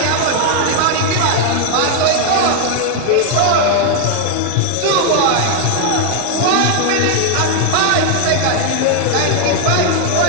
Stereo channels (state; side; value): different; both; correlation 0.00